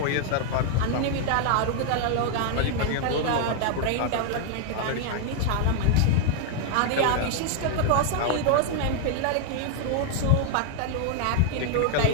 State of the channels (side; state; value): both; different; correlation 0.00